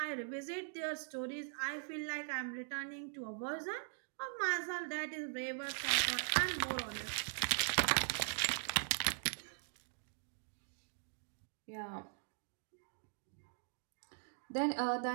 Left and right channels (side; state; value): left; silent; digital silence